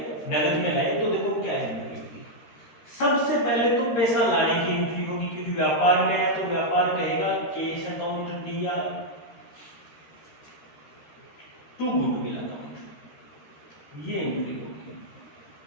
नगद में लाए। तो देखो क्या एंट्री होगी। सबसे पहले तो पैसा लाने की एंट्री होगी, क्योंकि व्यापार में है तो व्यापार कहेगा कैश अकाउंट दिया टू गुडविल अकाउंट, ये एंट्री होगी।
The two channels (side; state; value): right; late; 13 ms